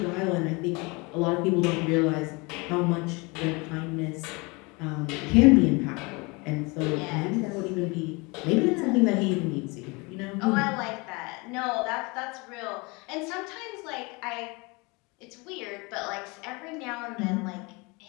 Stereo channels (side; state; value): right; quieter; 27.2 dB